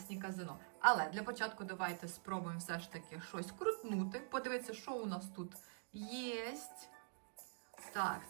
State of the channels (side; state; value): left; silent; digital silence